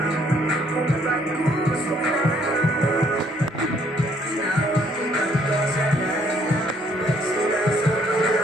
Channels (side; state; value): both; normal; correlation 0.66